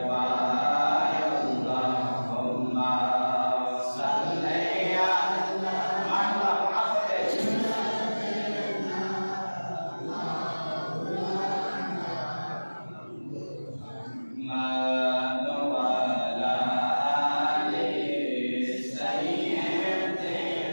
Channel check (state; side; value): inverted; both; correlation -1.00